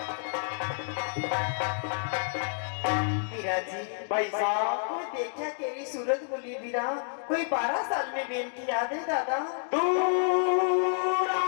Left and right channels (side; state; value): right; silent; digital silence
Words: बिराजी भाई साहब कोई देखा तेरी सूरत बोली बीरा कोई 12 साल में बेन की याद है दादा दूर